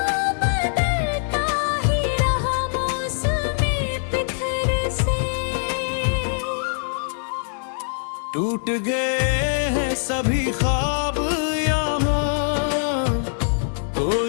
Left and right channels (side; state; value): right; silent; 64 dB below the other